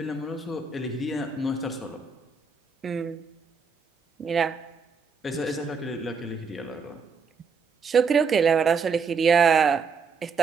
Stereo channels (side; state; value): left; quieter; 5.1 dB